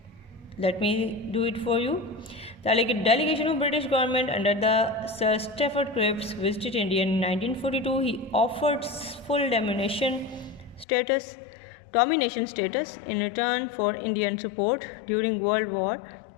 let me do it for you. The delegation of British government under the Sir Stafford Cripps visited India in 1942. He offered full domination status in return for Indian support during World War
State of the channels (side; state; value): right; drops out; at 10.9 s